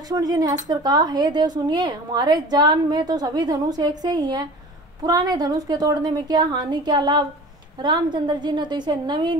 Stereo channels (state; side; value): normal; both; correlation 0.39